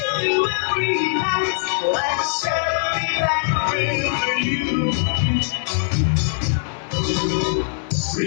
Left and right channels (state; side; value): silent; right; 65 dB below the other